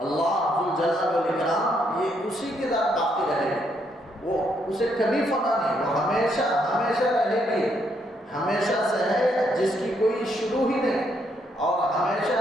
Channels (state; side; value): normal; both; correlation 0.74